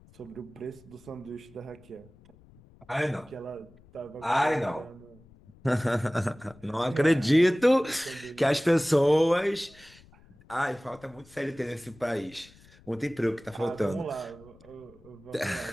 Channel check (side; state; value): left; noise; rumble, 25 dB below the sound